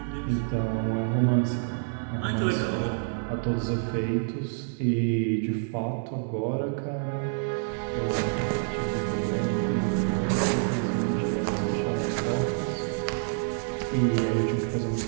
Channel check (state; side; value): silent; left; digital silence